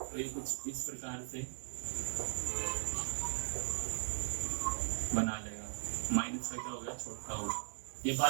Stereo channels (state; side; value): silent; left; digital silence